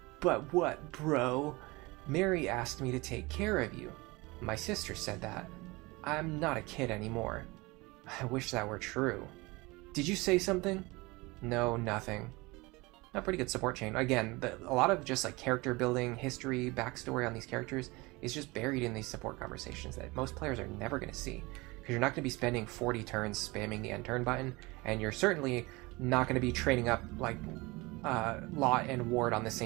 what, bro? Mary asked me to take care of you. My sister said that. I'm not a kid anymore. I wish that were true. Did you say something? No, nothing. A pretty good support chain. Again, a lot of just like character building, history, backstory on these characters is just buried in these support conversations that most players are never going to see. Because you're not going to be spending 40 turns spamming the end turn button, and you're certainly not going to be training up like Lot and Ward on the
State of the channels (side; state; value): left; quieter; 23.6 dB